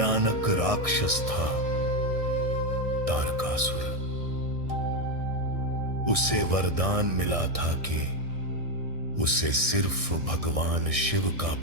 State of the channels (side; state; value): left; late; 1.6 ms